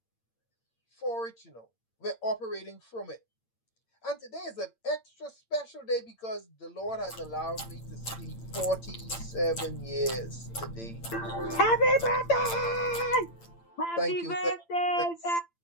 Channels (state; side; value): late; right; 8.8 ms